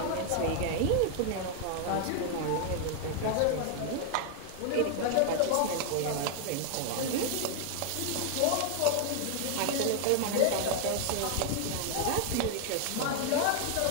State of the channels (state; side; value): different; both; correlation 0.00